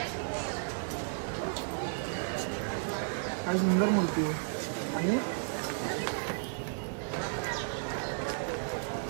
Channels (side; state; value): left; silent; 56 dB below the other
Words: काय सुंदर मूर्ती आहे.